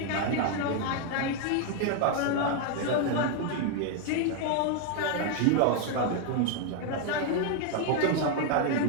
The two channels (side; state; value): both; different; correlation 0.01